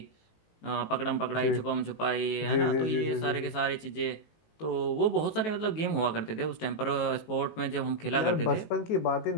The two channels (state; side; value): late; right; 18 ms